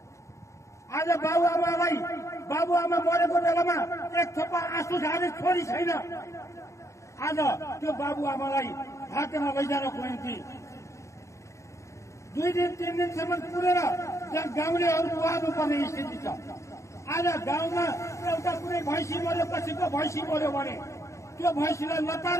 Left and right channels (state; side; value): late; right; 0.14 ms